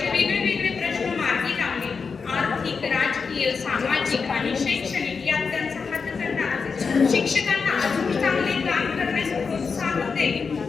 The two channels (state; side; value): quieter; right; 5.2 dB